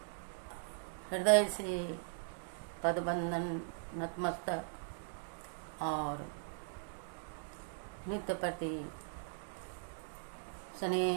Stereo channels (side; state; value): left; silent; digital silence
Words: हृदय से पदबंधन नतमस्तक और नित्य प्रति